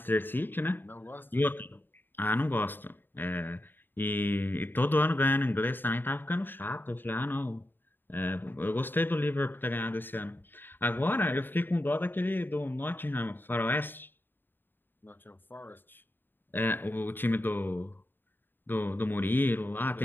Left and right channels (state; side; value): late; right; 0.094 ms